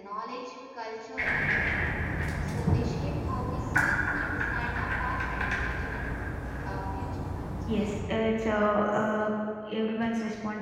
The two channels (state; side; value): identical; both; correlation 1.00